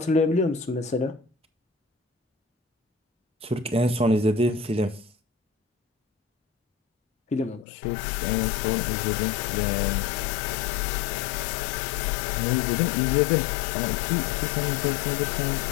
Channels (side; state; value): right; drops out; at 7.7 s